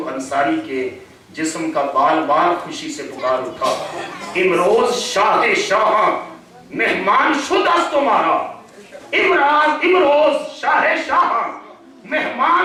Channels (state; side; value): identical; both; correlation 1.00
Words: انصاری کے جسم کا بال بال خوشی سے پکار اٹھا، امروز شاہ شاہ مہمان شد است تمہارا، امروز شاہ شاہ